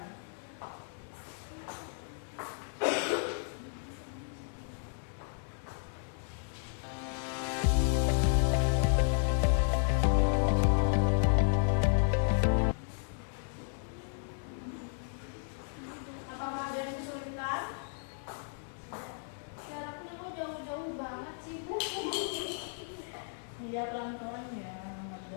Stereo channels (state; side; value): silent; right; 55 dB below the other